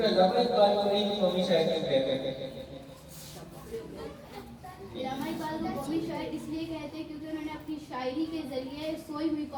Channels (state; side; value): identical; both; correlation 1.00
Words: علامہ اقبال کو نہیں قومی شاعر کیوں کہتے ہیں؟ علامہ اقبال کو قومی شاعر اس لیے کہتے ہیں کیونکہ انہوں نے اپنی شاعری کے ذریعے سوئی ہوئی